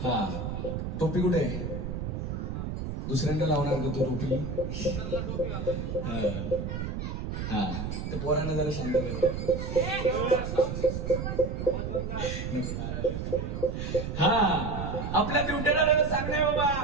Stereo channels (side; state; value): right; noise; rumble, 4 dB below the sound